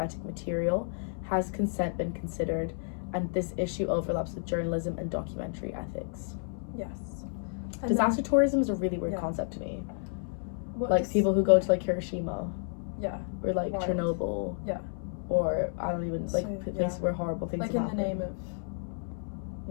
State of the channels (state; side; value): silent; right; 57 dB below the other